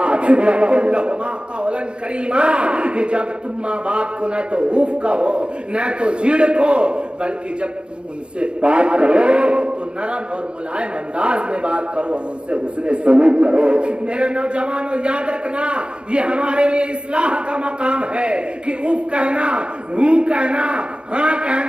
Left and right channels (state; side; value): late; left; 0.054 ms